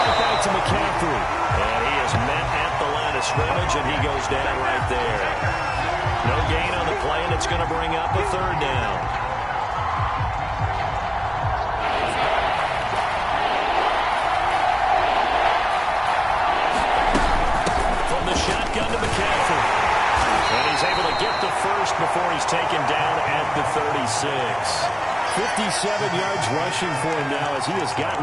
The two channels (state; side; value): identical; both; correlation 1.00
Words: back to McCaffrey. And he is met at the line of scrimmage, and he goes down right there. No gain on the play, and it's going to bring up a third down. From the shotgun to McCaffrey. And he's able to get the first before he's taken down at the 36. 57 yards rushing for him now as he has gotten